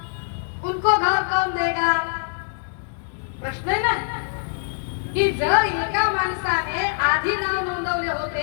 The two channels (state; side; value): silent; right; digital silence